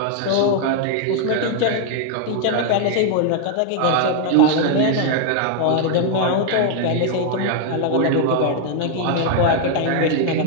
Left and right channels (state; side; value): different; both; correlation 0.00